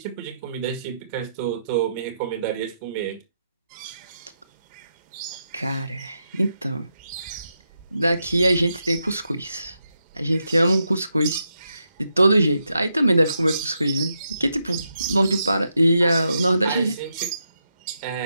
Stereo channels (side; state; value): both; inverted; correlation -0.82